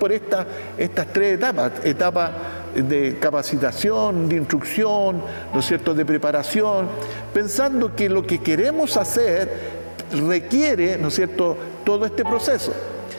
estas tres etapas? Etapa de capacitación, de instrucción, ¿no es cierto?, de preparación, pensando que lo que queremos hacer requiere, ¿no es cierto?, todo este proceso.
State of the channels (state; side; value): inverted; both; correlation -1.00